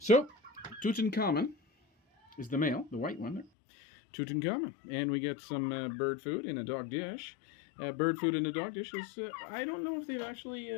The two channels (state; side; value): drops out; right; at 3.5 s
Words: Tutankamen is the male, the white one there. Tutankamen. And we get some bird food in a dog dish. Bird food in a dog dish is, I don't know if they've actually,